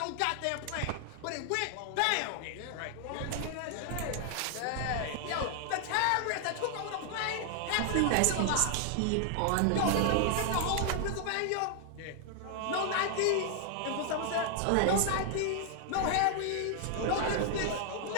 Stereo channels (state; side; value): different; both; correlation 0.00